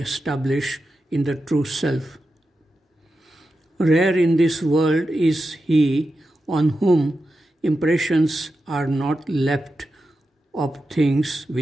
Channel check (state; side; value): normal; both; correlation 0.90